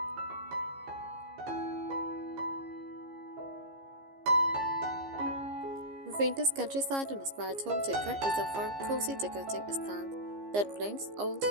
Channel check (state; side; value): late; left; 15 ms